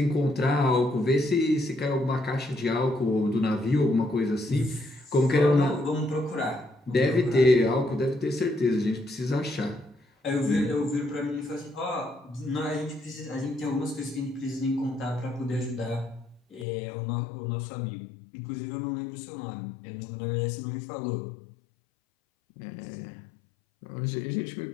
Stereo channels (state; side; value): drops out; right; at 16.7 s